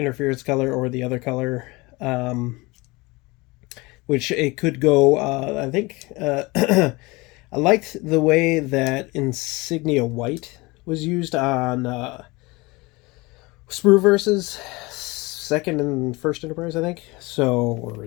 color or the other color, which it could go. I think I liked the way that Insignia White was used on Sprue-Verse's 2nd and 1st Enterprise, I think. So, or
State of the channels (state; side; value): quieter; right; 23.7 dB